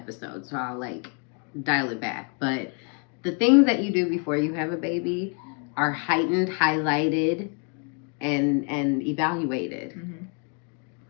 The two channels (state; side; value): quieter; right; 37.4 dB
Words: so I'll, like, dial it back. But the things that you do before you have a baby are heightened, highlighted, and evaluated.